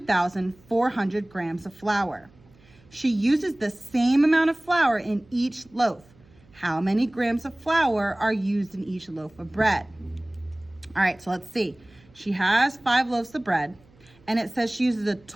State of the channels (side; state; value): right; noise; hum, 28 dB below the sound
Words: grams of flour. She uses the same amount of flour in each loaf. How many grams of flour are used in each loaf of bread? All right, so let's see. She has 5 loaves of bread, and it says she uses a